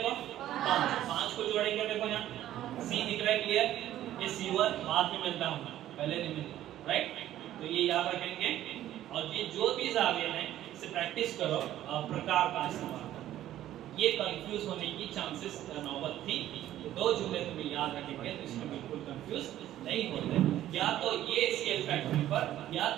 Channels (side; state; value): left; quieter; 12.9 dB